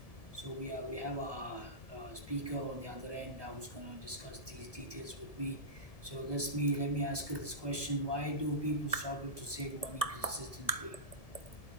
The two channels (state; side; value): late; right; 1.7 ms